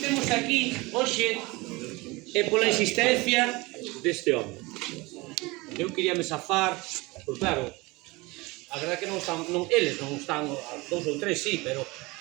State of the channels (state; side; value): quieter; left; 23.5 dB